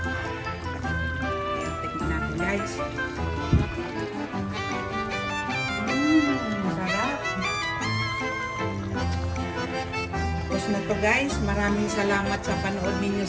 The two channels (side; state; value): both; identical; correlation 1.00